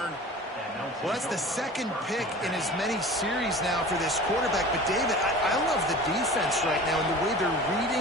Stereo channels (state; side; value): normal; both; correlation 0.39